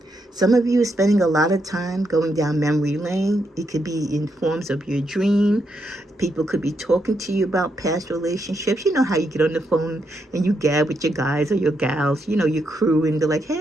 Some of you are spending a lot of time going down memory lane. It could be in forms of your dream. People could be talking to you about past relationships. You know how you get on the phone and you gab with your guys or your gals, you know, your crew, and they're like,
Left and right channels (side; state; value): both; normal; correlation 0.80